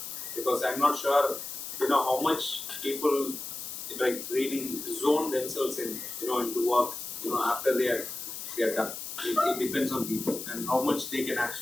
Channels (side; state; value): left; noise; hiss, 8 dB below the sound